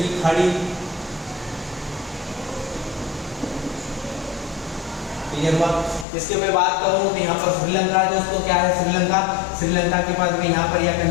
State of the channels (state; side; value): drops out; right; at 6.1 s